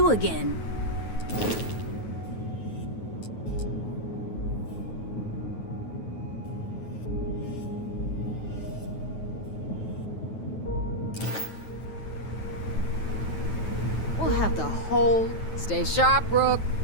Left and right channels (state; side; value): late; right; 9.2 ms